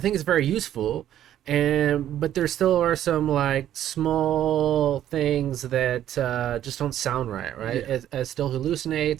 it's very useful. But there still are some like small things that just don't sound right? Yeah. It still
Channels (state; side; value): quieter; left; 11.5 dB